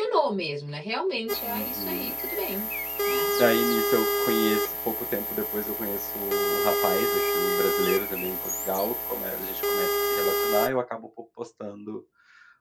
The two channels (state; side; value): identical; both; correlation 1.00